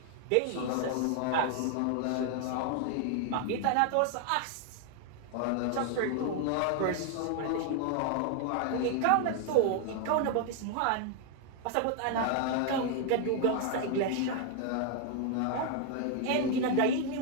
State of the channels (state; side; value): different; both; correlation 0.00